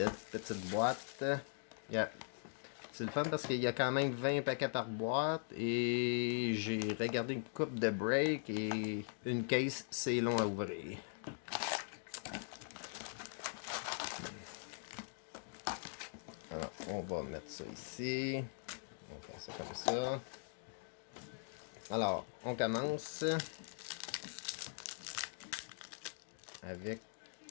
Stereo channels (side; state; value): right; silent; digital silence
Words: petite boîte. C'est le fun parce qu'il y a quand même 20 paquets par boîte et j'ai regardé une coupe de break et une case, c'est long à ouvrir. Alors, on va mettre ça ici. On va faire ça comme ça. Alors, on commence avec...